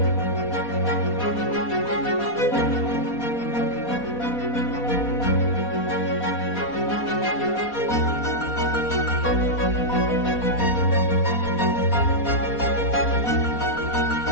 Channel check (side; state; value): right; late; 4.2 ms